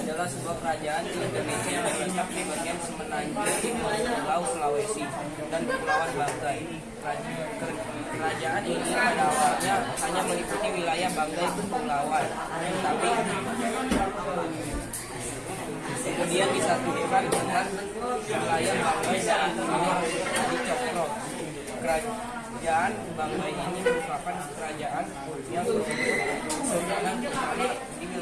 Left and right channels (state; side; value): identical; both; correlation 1.00